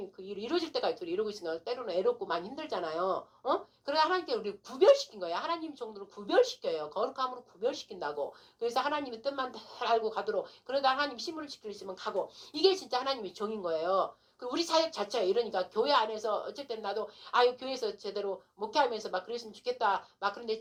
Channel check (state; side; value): identical; both; correlation 1.00